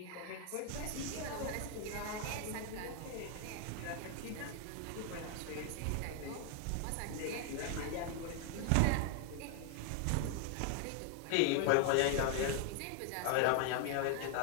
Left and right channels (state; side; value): different; both; correlation 0.00